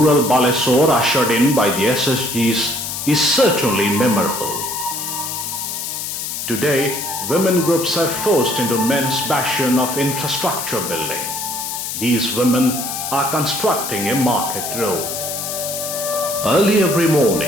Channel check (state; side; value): noise; left; hiss, 5 dB below the sound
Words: Balesore ushered in by the SSGs is certainly memorable. Today, women groups are forced into men's passion of infrastructure building. These women are constructing a market road. Early every